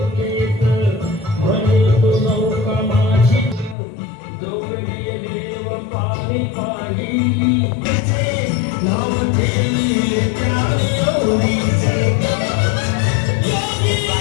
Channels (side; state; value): right; drops out; at 3.8 s